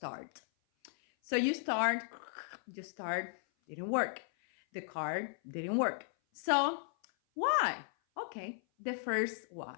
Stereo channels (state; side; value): silent; right; 54 dB below the other